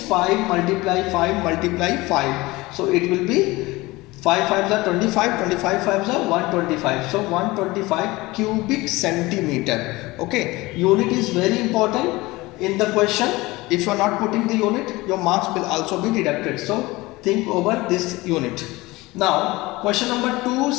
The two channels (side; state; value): right; quieter; 21.0 dB